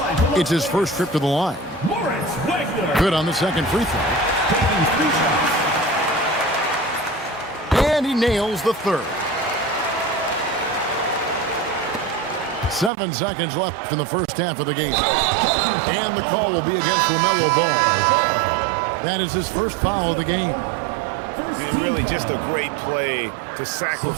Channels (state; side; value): drops out; left; at 12.9 s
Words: It's his first trip to the line. Good on the second free throw. And he nails the third. 7 seconds left in the first half of the game. And the call will be against LaMelo Ball. That is his first foul of the game. And really just a great play to